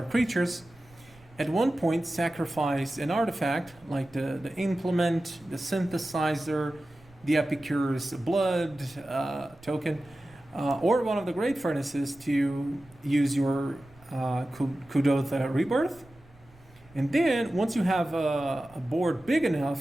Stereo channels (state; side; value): noise; right; rumble, 27 dB below the sound